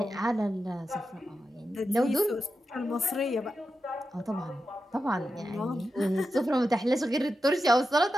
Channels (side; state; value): both; normal; correlation 0.89